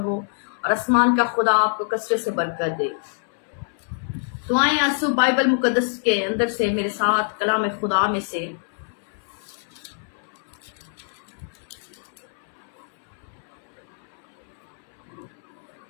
हो, और आसमान का खुदा आपको कसरत से बरकत दे। तो आए आंसू बाइबल मुकद्दस के अंदर से मेरे साथ कलाम खुदा में से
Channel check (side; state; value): right; silent; 62 dB below the other